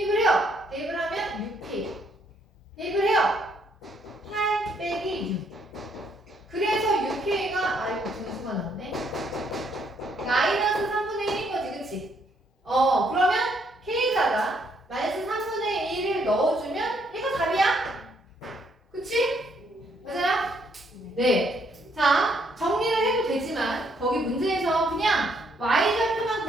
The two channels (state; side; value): normal; both; correlation 0.70